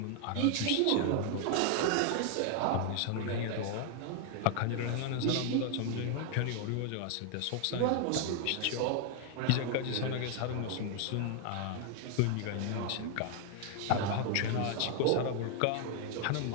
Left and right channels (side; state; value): both; different; correlation 0.00